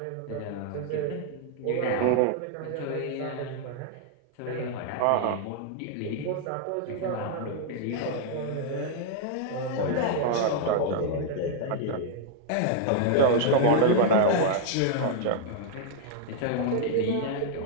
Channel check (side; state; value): both; different; correlation -0.01